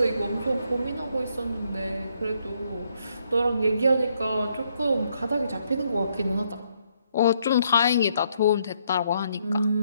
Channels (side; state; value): both; inverted; correlation -0.73